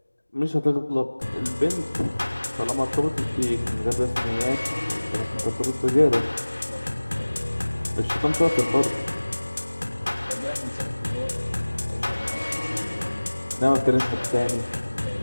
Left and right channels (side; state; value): both; inverted; correlation -1.00